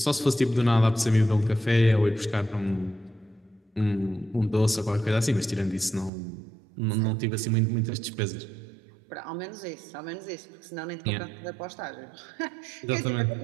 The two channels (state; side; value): drops out; left; at 6.1 s